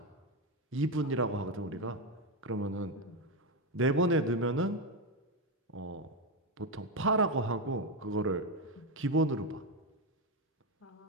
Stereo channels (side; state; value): both; normal; correlation 0.09